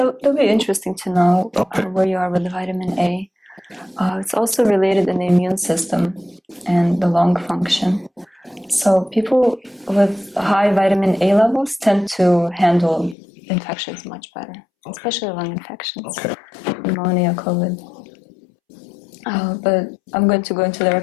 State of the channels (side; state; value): right; drops out; at 13.2 s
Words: be interesting to know Okay. where you are with the vitamin A. It's also related in the immune system and the lung function. So people with high vitamin A levels tend to handle infections much better, especially lung infections, Okay. pneumonia, COVID. But I'm going to go into the